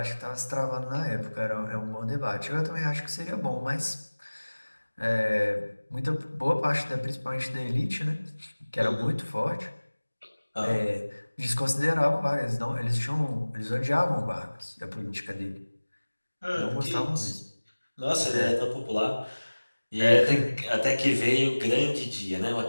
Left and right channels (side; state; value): both; inverted; correlation -1.00